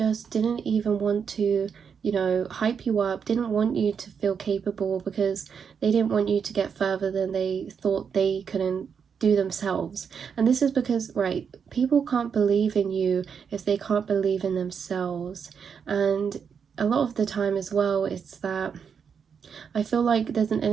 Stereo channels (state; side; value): quieter; left; 6.7 dB